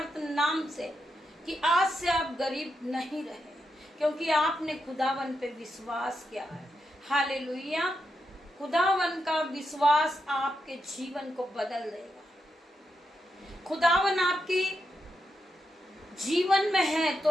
नाम से कि आज से आप गरीब नहीं रहे, क्योंकि आपने खुदावन पे विश्वास किया है। हालेलुया। खुदावन का विश्वास आपके जीवन को बदल देगा। खुदावन आपकी जीवन में है तो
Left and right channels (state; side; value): normal; both; correlation 0.85